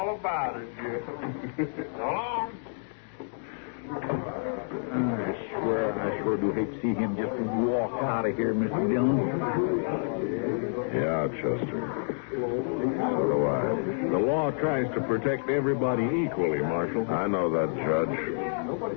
about it, Jim. So long. I sure do hate to see him just walk out of here, Mr. Dillon. Yeah, Chester. So do I. The law tries to protect everybody equally, Marshal. I know that, Judge.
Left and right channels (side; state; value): right; silent; digital silence